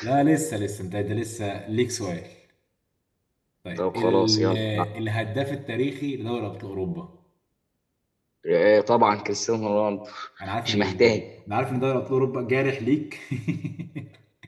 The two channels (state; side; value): identical; both; correlation 1.00